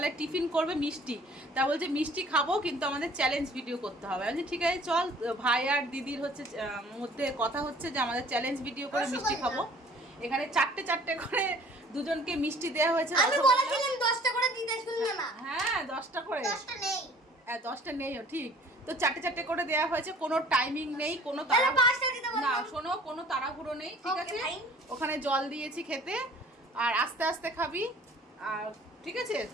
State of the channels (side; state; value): both; normal; correlation 0.52